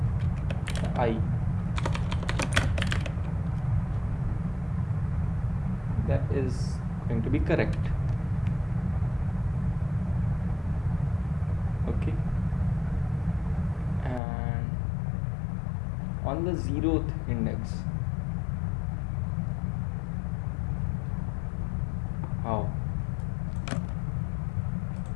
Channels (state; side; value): drops out; right; at 14.2 s